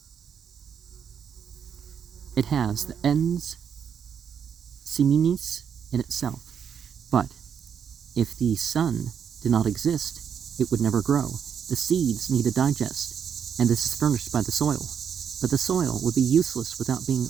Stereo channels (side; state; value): left; quieter; 7.8 dB